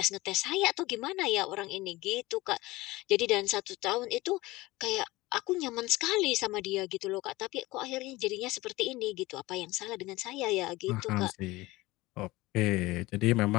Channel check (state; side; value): quieter; right; 20.1 dB